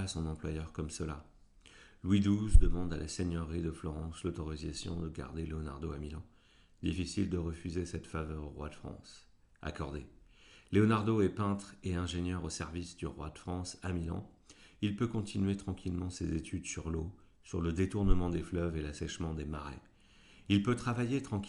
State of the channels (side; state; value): both; identical; correlation 1.00